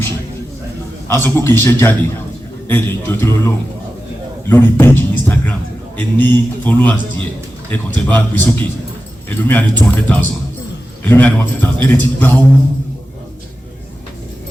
a sọ pé kì í ṣe jáde ẹ lè jọ tó lọ́wọ́ lórí page Instagram ẹ ní followers díẹ̀ ẹ kàn tẹ́ bá gbé sókè ẹlòmíà ní 200,000 ẹlòmíà ní 150,000 ẹ lè ti gba owó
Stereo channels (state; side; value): normal; both; correlation 0.92